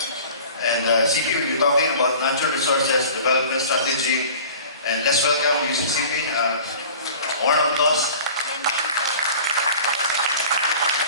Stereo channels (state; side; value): inverted; both; correlation -0.43